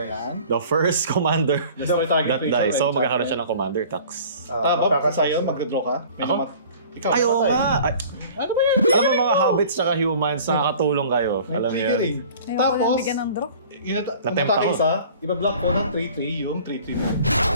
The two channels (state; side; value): inverted; both; correlation -0.47